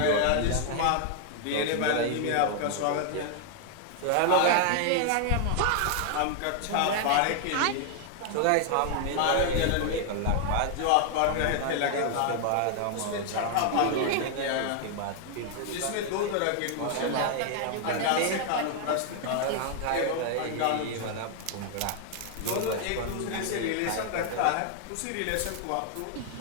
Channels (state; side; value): different; both; correlation 0.00